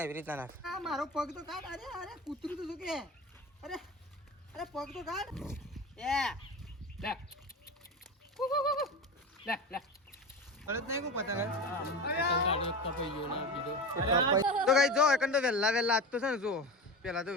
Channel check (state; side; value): normal; both; correlation 0.27